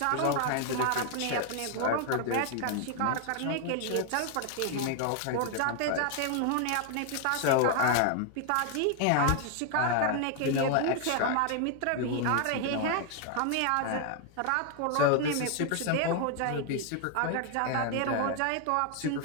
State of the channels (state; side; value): different; both; correlation 0.00